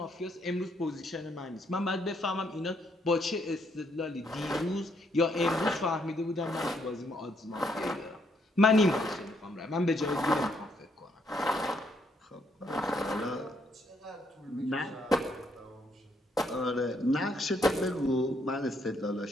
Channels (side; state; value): both; normal; correlation 0.72